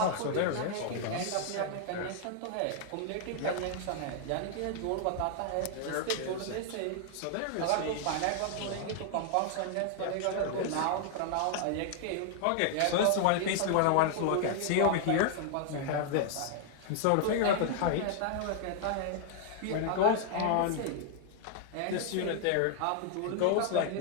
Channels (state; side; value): different; both; correlation 0.00